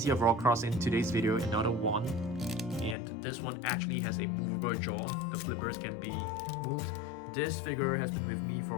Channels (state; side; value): drops out; right; at 3.0 s